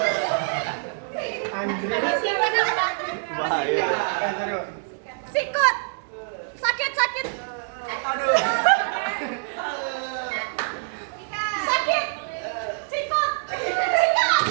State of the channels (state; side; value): silent; left; 62 dB below the other